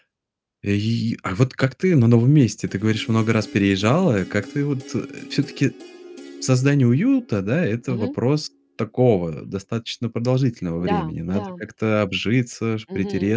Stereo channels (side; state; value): both; identical; correlation 1.00